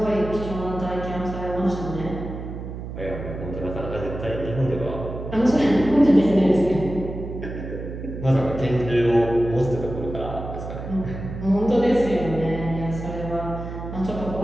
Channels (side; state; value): right; noise; hum, 8 dB below the sound